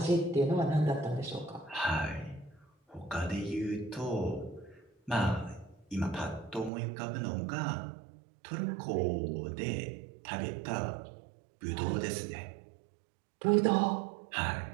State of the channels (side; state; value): left; drops out; at 6.7 s